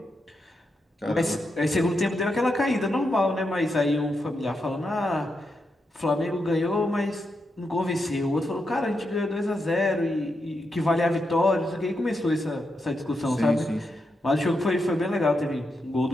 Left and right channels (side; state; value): both; normal; correlation 0.85